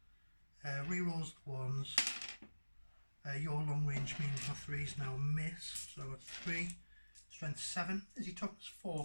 rerolls the 1s, Your long range means my 3's now miss, so it's 3. Strength 7. Is he toughness 4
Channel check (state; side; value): inverted; both; correlation -1.00